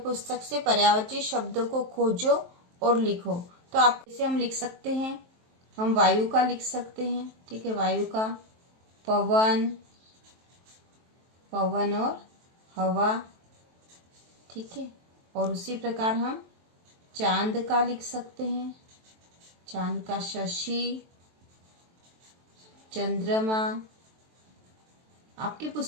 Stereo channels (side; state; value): left; late; 23 ms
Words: से पर्यायवाची शब्दों को खोजो और लिखो। तो आप इसे हम लिख सकते हैं, हम वायु का लिख सकते हैं। ठीक है, वायु का पवन, पवन और हवा। ठीक है, और उसी प्रकार हम चांद का लिख सकते हैं, चांद का शशि, चंद्रमा। आपकी